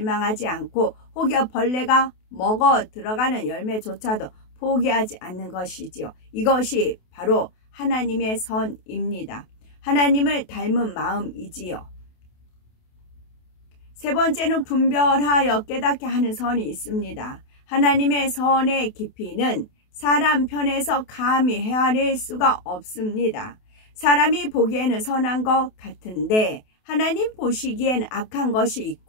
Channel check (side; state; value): right; late; 28 ms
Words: 않고 혹여 벌레가 먹어 들어가는 열매조차도 포기하지 않는 것이지요. 이것이 바로 하나님의 선입니다. 하나님을 닮은 마음이지요. 세 번째는 분별하여 깨닫게 하는 선이 있습니다. 하나님의 선의 깊이는 사람 편에서 감히 헤아릴 수가 없습니다. 사람이 보기에는 선한 것 같은데 하나님 보시기에는 악한 것이